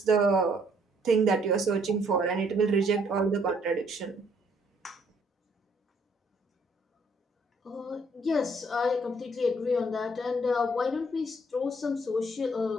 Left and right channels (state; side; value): normal; both; correlation 0.65